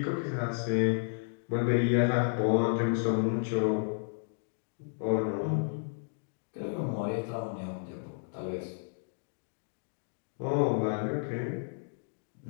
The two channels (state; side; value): silent; right; digital silence